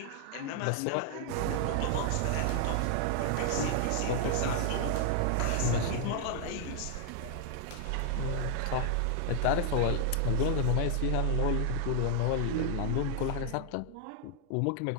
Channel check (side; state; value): both; different; correlation 0.00